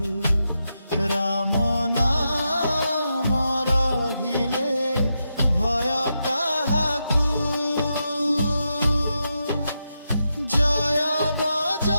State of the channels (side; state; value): both; inverted; correlation -0.86